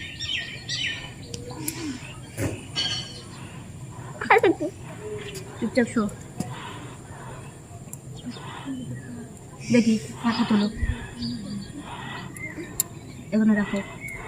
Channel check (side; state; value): both; identical; correlation 1.00